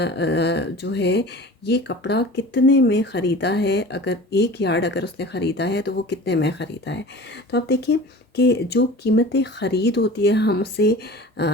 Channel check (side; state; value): both; normal; correlation 0.39